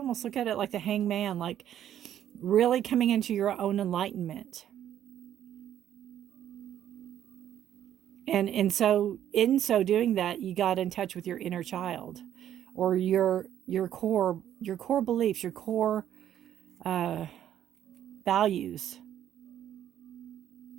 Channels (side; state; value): left; quieter; 10.8 dB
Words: look at it like the Hangman, like really coming into your own enlightenment. And so in so doing that, you got in touch with your inner child, or your core beliefs, your core values.